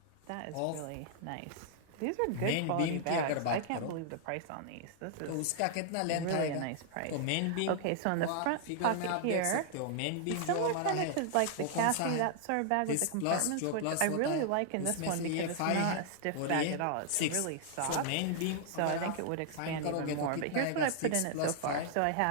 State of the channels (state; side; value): different; both; correlation -0.01